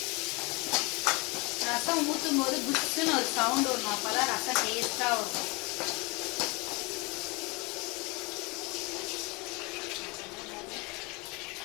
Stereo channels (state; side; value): quieter; right; 27.3 dB